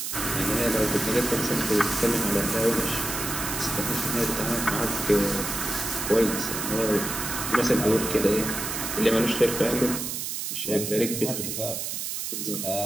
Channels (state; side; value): noise; right; hiss, 4 dB below the sound